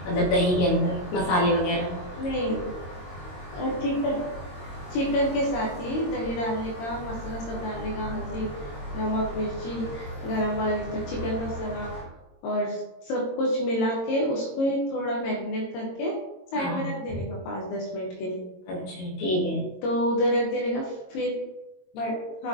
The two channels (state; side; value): late; right; 22 ms